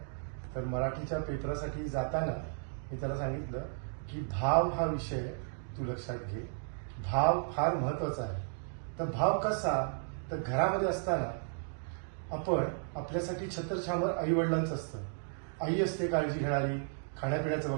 तर मराठीच्या पेपरासाठी जाताना मी त्याला सांगितलं की भाव हा विषय तू लक्षात घे. भाव फार महत्वाचा आहे. तर भाव कसा? तर घरामध्ये असताना आपण आपल्यासाठी छत्रछामर आई वडिलांचं असतं. आई असते काळजी घेणारी, खाण्यापिण्याचं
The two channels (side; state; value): left; silent; digital silence